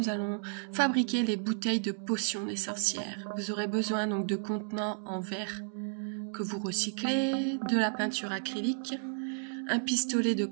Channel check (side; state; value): left; silent; digital silence